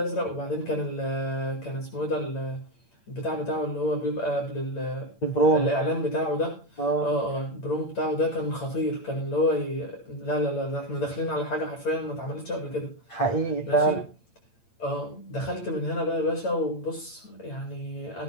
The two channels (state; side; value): late; right; 8.7 ms